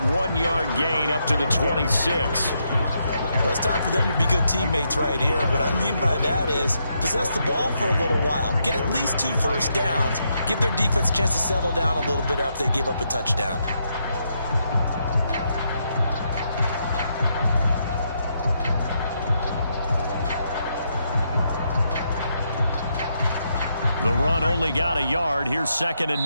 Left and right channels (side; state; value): both; inverted; correlation -0.79